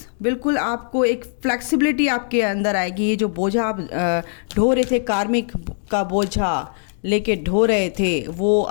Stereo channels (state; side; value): silent; right; 65 dB below the other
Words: बिल्कुल आपको एक फ्लेक्सिबिलिटी आपके अंदर आएगी। ये जो बोझा आप ढो रहे थे, कार्मिक का बोझा लेके ढो रहे थे, वो